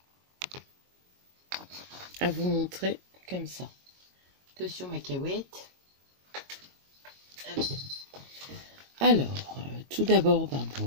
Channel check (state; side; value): late; left; 22 ms